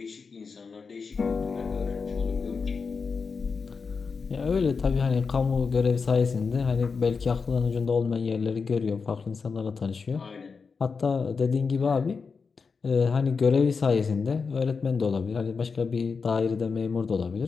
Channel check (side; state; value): right; quieter; 5.1 dB